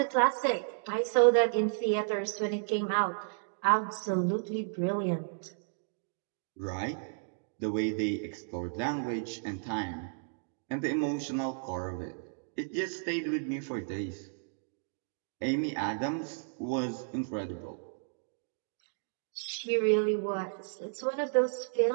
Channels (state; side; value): silent; left; digital silence